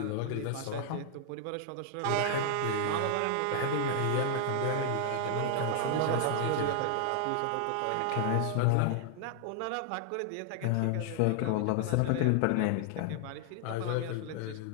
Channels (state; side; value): different; both; correlation 0.00